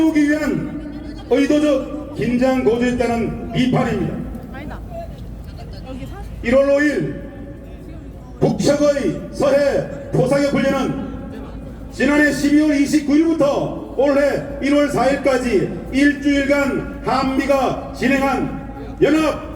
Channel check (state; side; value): identical; both; correlation 1.00